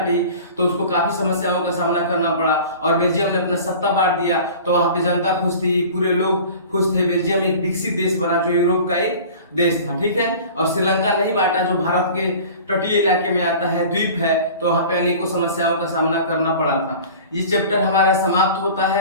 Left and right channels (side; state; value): both; inverted; correlation -0.41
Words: तो उसको काफी समस्याओं का सामना करना पड़ा, और बेल्जियम ने अपना सत्ता बांट दिया तो वहां पे जनता खुश थी, पूरे लोग खुश थे। बेल्जियम एक विकसित देश बना जो यूरोप का एक देश था, ठीक है। और श्रीलंका नहीं बांटा जो भारत के तटीय इलाके में आता है, द्वीप है, तो वहां पे अनेकों समस्याओं का सामना करना पड़ा था। ये चैप्टर हमारा समाप्त होता